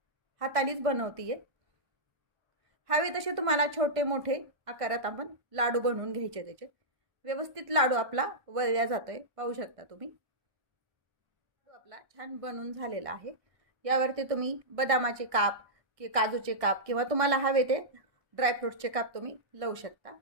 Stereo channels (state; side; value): late; left; 1.5 ms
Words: हातानेच बनवतीये. हवे तसे तुम्हाला छोटे मोठे आकारात आपण लाडू बनवून घ्यायचे. त्याचे व्यवस्थित लाडू आपला वळल्या जातोय, पाहू शकता तुम्ही. आपला छान बनून झालेला आहे. यावरती तुम्ही बदामाचे काप की काजूचे काप किंवा तुम्हाला हवे ते ड्रायफ्रूटचे काप तुम्ही लावू शकता,